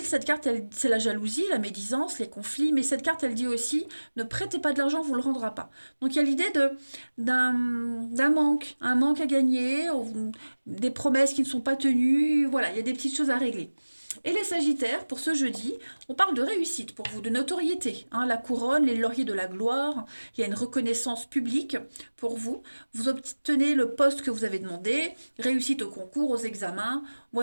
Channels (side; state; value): both; inverted; correlation -1.00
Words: cette carte, c'est la jalousie, la médisance, les conflits, mais cette carte, elle dit aussi, ne prêtez pas de l'argent, on ne vous le rendra pas. Donc il y a l'idée d'un manque, un manque à gagner, des promesses qui ne sont pas tenues, voilà, il y a des petites choses à régler. Et les Sagittaires, pour ce jeudi, on parle de réussite pour vous, de notoriété, hein, la couronne, les lauriers de la gloire, il y a une reconnaissance publique pour vous, vous obtenez le poste que vous avez demandé, réussite au concours, aux examens,